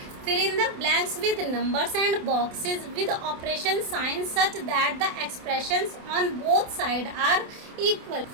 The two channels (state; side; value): late; left; 28 ms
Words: fill in the blanks with numbers and boxes with operation sign such that the expressions on both side are equal.